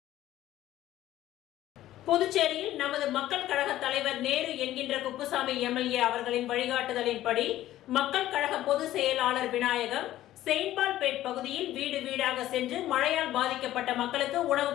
புதுச்சேரியில் நமது மக்கள் கழக தலைவர் நேரு என்கின்ற குப்புசாமி எம்எல்ஏ அவர்களின் வழிகாட்டுதலின்படி மக்கள் கழக பொதுச் செயலாளர் விநாயகம் செயின்ட்பால்பேட் பகுதியில் வீடு வீடாக சென்று மழையால் பாதிக்கப்பட்ட மக்களுக்கு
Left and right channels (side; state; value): right; quieter; 14.0 dB